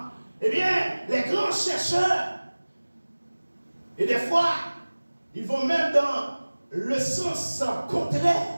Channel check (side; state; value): both; inverted; correlation -1.00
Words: eh bien, les grands chercheurs, et des fois, ils vont même dans le sens contraire